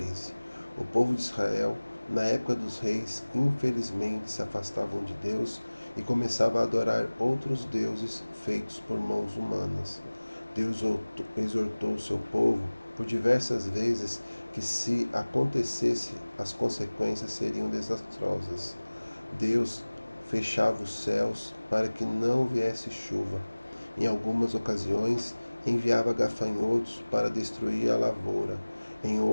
O povo de Israel, na época dos reis, infelizmente se afastavam de Deus e começava a adorar outros deuses feitos por mãos humanas. Deus exortou o seu povo por diversas vezes que, se acontecesse, as consequências seriam desastrosas. Deus fechava os céus para que não viesse chuva. Em algumas ocasiões, enviava gafanhotos para destruir a lavoura. Em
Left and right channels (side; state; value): both; inverted; correlation -1.00